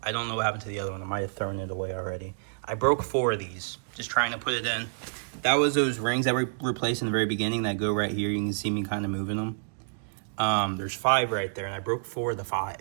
I don't know what happened to the other one. I might have thrown it away already. I broke 4 of these, just trying to put it in. That was those rings that we replaced in the very beginning that go right here. You can see me kind of moving them. There's 5 right there, and I broke 4 of the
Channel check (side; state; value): left; silent; digital silence